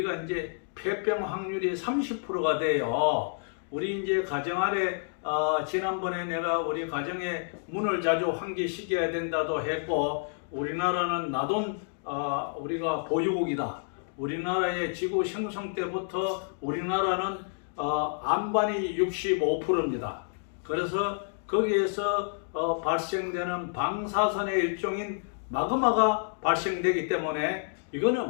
이제 폐병 확률이 30%가 돼요. 우리 이제 가정 아래 지난번에 내가 우리 가정에 문을 자주 환기시켜야 된다도 했고, 우리나라는 나돈 우리가 보유국이다. 우리나라의 지구 생성 때부터 우리나라는 안반이 65%입니다. 그래서 거기에서 발생되는 방사선의 일종인 마그마가 발생되기 때문에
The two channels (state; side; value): silent; right; digital silence